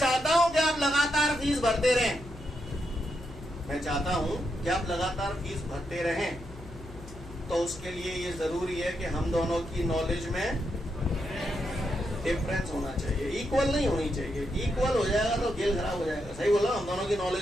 हूं कि आप लगातार फीस भरते रहें। मैं चाहता हूं कि आप लगातार फीस भरते रहें। तो उसके लिए ये जरूरी है कि हम दोनों की नॉलेज में डिफरेंस होना चाहिए, इक्वल नहीं होनी चाहिए। इक्वल हो जाएगा तो खेल खराब हो जाएगा। सही बोला? हम दोनों की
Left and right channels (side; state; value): left; noise; hum, 16 dB below the sound